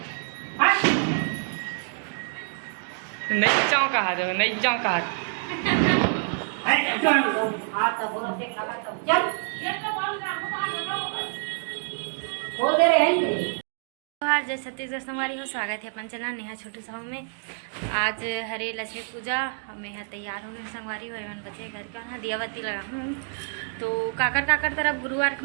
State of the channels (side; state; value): left; silent; 60 dB below the other